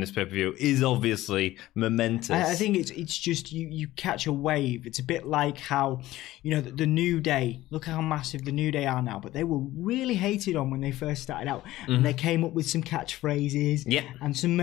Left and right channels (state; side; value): quieter; right; 16.0 dB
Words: pay-per-view is obviously momentous. I think it's just you catch a wave. It's a bit like how, the New Day, look how massive the New Day are now, but they were really hated on when they first started out. And they came up with some catchphrases and some